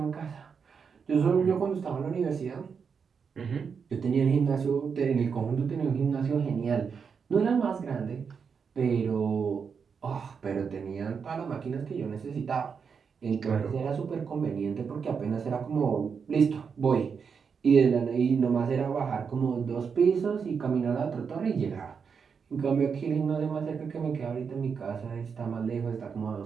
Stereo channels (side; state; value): left; quieter; 6.1 dB